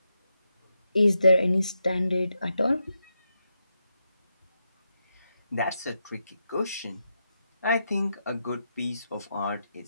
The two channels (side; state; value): both; inverted; correlation -0.84